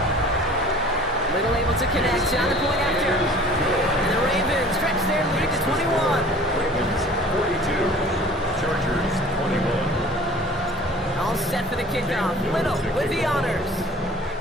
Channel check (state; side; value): normal; both; correlation 0.47